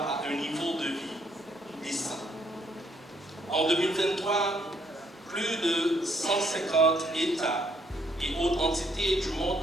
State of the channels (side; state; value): both; normal; correlation 0.70